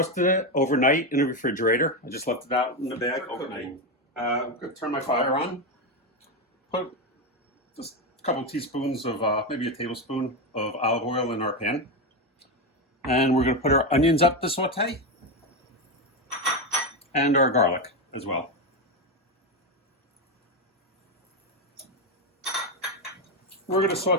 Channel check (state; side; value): normal; both; correlation 0.11